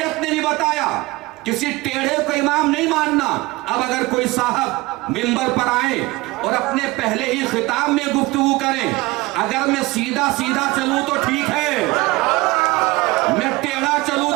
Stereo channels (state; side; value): quieter; left; 21.6 dB